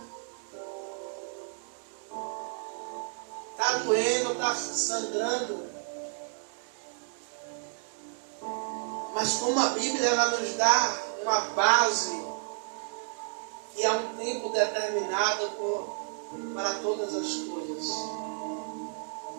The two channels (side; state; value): left; silent; 57 dB below the other